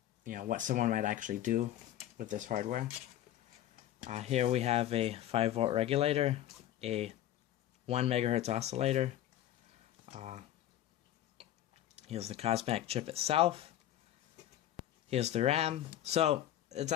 what someone might actually do with this hardware. Here we have a 5-volt regulator, a 1 megahertz oscillator. Here's the COSMAC chip itself. Here's the RAM. So it's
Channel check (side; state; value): right; quieter; 12.6 dB